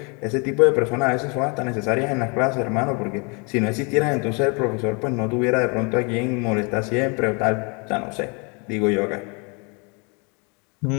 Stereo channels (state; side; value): quieter; right; 32.6 dB